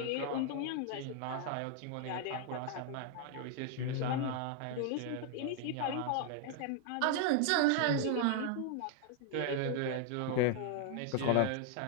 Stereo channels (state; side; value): different; both; correlation 0.00